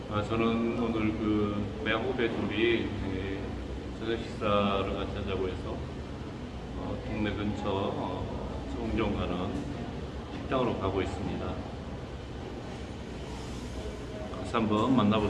저는 오늘 그 매후배 둘이 저녁 식사를 같이 하자고 해서 동네 근처 송정 가는 식당으로 가고 있습니다. 같이 한번 만나볼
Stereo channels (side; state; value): both; identical; correlation 1.00